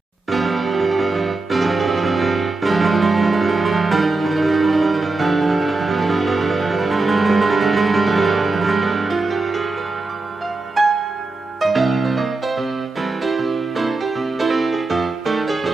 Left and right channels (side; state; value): left; quieter; 3.4 dB